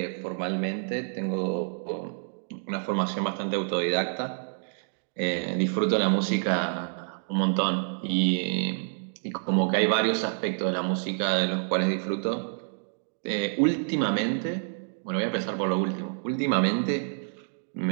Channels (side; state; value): left; silent; digital silence